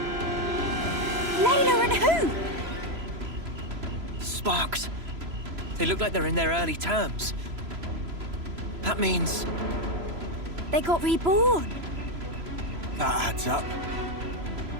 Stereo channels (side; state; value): left; late; 3.0 ms